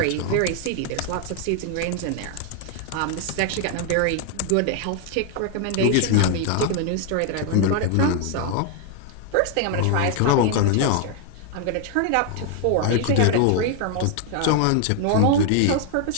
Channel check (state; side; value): different; both; correlation 0.00